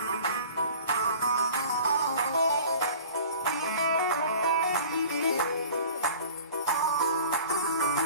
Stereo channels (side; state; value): both; inverted; correlation -0.45